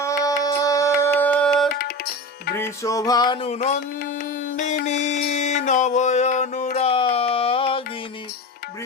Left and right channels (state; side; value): normal; both; correlation 0.26